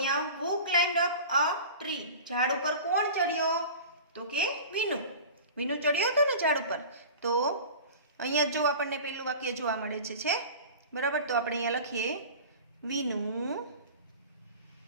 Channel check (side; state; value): both; inverted; correlation -0.38